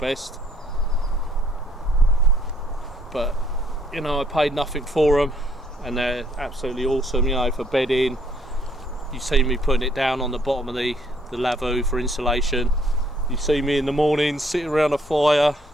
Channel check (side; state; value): both; normal; correlation 0.66